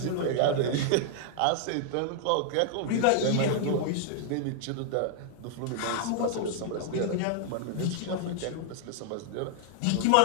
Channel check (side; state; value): both; different; correlation -0.01